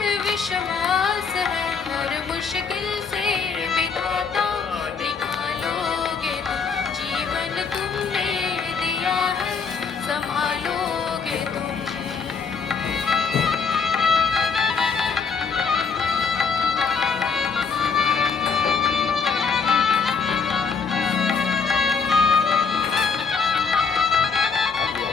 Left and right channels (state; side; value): quieter; right; 5.5 dB